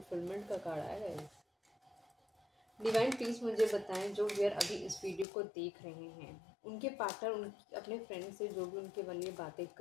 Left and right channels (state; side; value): drops out; right; at 5.2 s